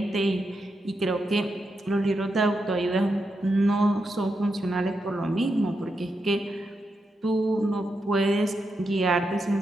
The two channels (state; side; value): normal; both; correlation 0.85